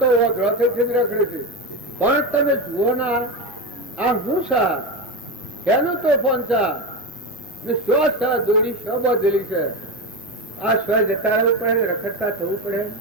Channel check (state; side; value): normal; both; correlation 0.17